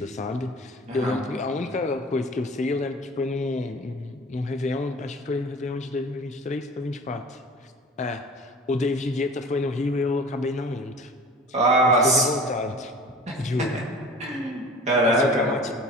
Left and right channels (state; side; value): normal; both; correlation 0.42